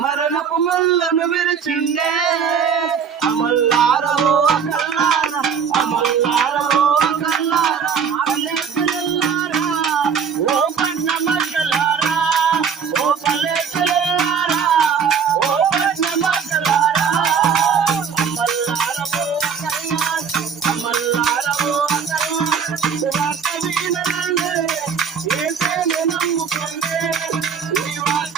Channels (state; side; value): quieter; left; 6.9 dB